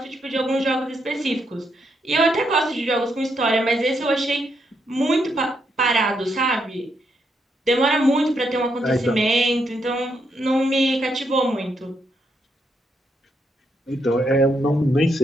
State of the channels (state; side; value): normal; both; correlation 0.78